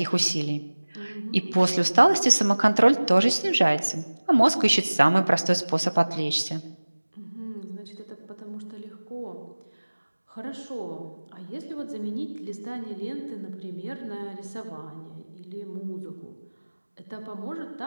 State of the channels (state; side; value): inverted; both; correlation -1.00